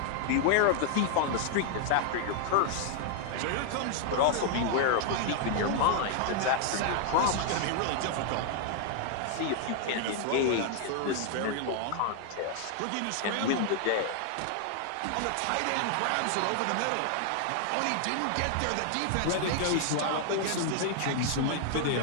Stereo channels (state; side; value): different; both; correlation 0.00